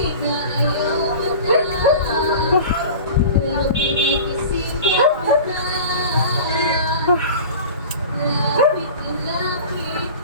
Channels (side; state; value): both; inverted; correlation -0.37